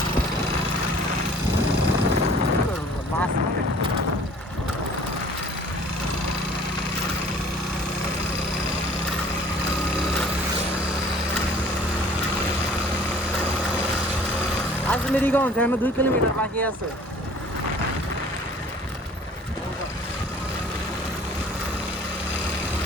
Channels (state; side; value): normal; both; correlation 0.52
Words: মাছ মানে আজমেরিগঞ্জ এখনো 2 কিলোমিটার বাকি আছে।